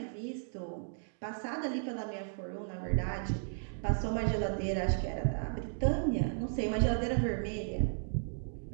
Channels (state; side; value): silent; left; digital silence